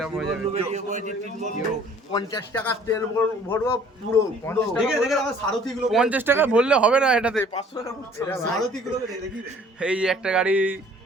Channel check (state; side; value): normal; both; correlation 0.55